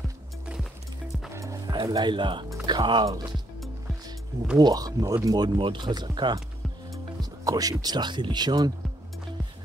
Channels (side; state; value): both; normal; correlation 0.72